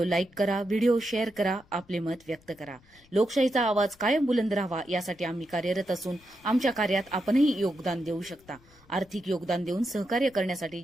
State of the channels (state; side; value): noise; left; rumble, 28 dB below the sound